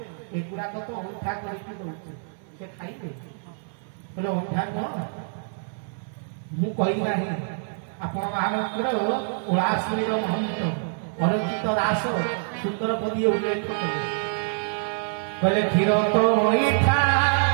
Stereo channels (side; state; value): left; silent; 61 dB below the other